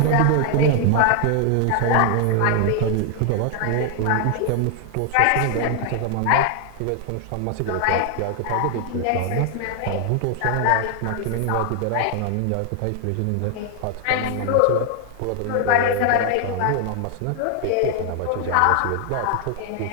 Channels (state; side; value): different; both; correlation 0.00